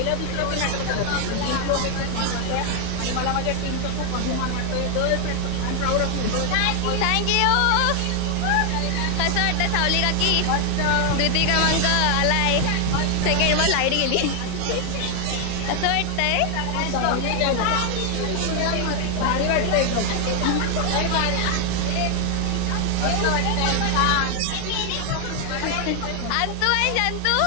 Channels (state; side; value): different; both; correlation 0.00